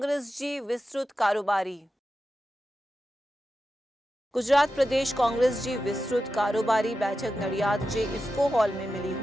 जी विस्तृत कारोबारी। गुजरात प्रदेश कांग्रेस जी विस्तृत कारोबारी बैठक नडियाद जे इफ्को हॉल में मिली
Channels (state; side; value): normal; both; correlation 0.91